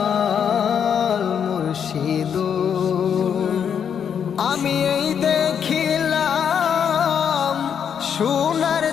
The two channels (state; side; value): quieter; right; 7.8 dB